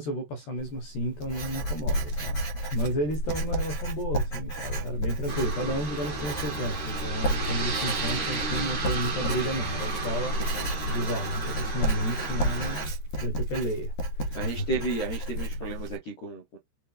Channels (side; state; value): right; late; 13 ms